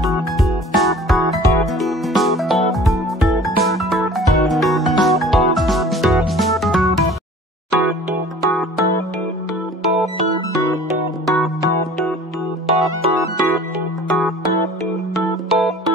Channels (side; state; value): both; normal; correlation 0.46